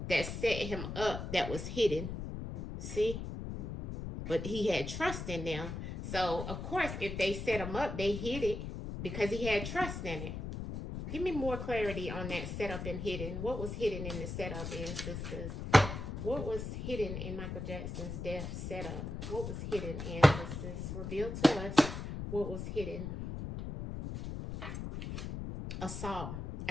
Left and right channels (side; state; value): left; noise; rumble, 6 dB below the sound